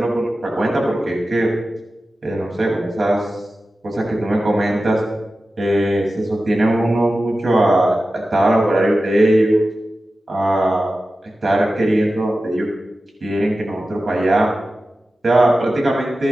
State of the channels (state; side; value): normal; both; correlation 0.94